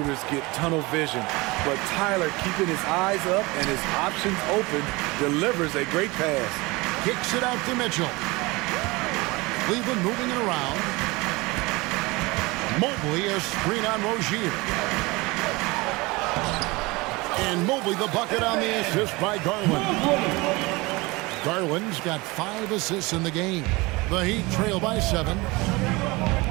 get tunnel vision, but Tyler, keeping his eyes up and his options open, delivers a great pass. Kicks it out to Mitchell. Cleveland moving it around. Mobley a screen on Rozier. And Mobley the bucket on the assist by Garland. Garland's got 5 assists in the game. The Heat trail by 7.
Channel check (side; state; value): left; quieter; 23.6 dB